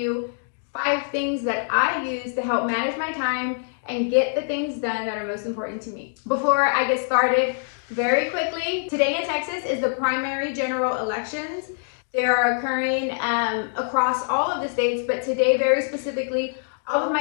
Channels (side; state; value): right; silent; digital silence